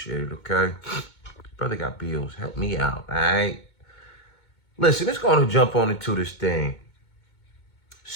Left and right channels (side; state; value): right; late; 2.2 ms